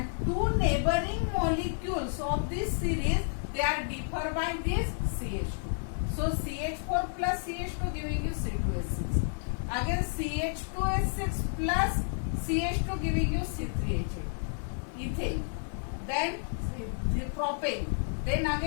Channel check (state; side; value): silent; right; digital silence